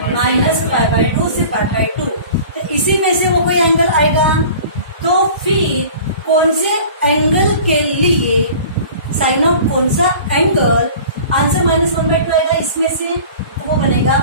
-π/2 से π/2। तो इसी में से वो कोई एंगल आएगा, तो फिर कौन से एंगल के लिए साइन ऑफ कौन सा एंगल, आंसर -1/2 आएगा इसमें से, तो वो बनेगा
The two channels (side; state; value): both; inverted; correlation -0.43